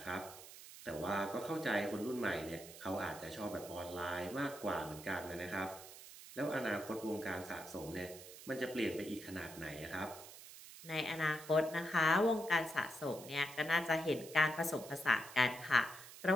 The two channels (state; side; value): noise; right; hiss, 15 dB below the sound